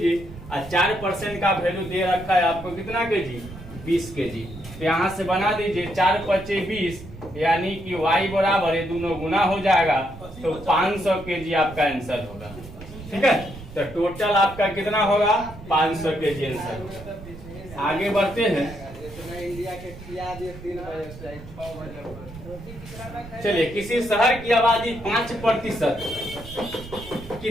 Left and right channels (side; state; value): right; noise; rumble, 15 dB below the sound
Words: और 4% का वैल्यू दे रखा है आपको कितना के जी, 20 के जी। तो यहाँ से बना दीजिए 4 × 20, यानी कि y बराबर, ये दोनों गुना हो जाएगा, तो 500 के जी आपका आंसर होगा। ठीक है। तो टोटल आपका कितना होगा 500 के जी आंसर। आगे बढ़ते हैं। चलिए, किसी शहर की आबादी 5% की